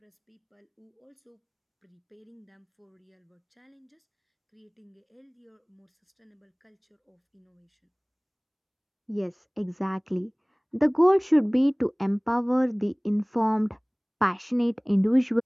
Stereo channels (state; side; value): identical; both; correlation 1.00